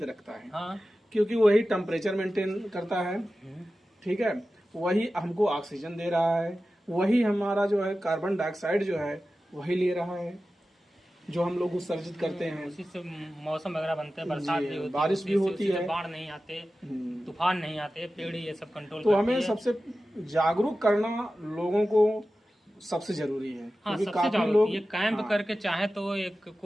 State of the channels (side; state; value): both; normal; correlation 0.94